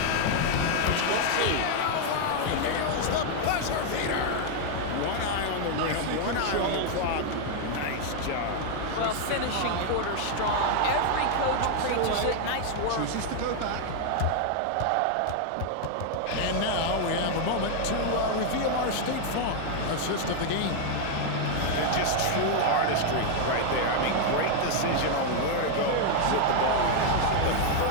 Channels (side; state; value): both; different; correlation 0.00